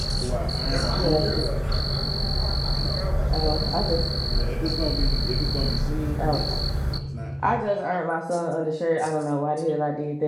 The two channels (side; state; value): both; identical; correlation 1.00